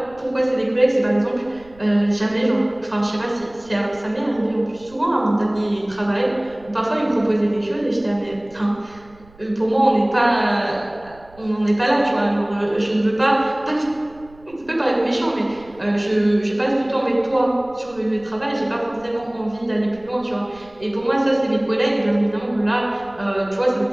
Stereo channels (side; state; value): right; noise; rumble, 25 dB below the sound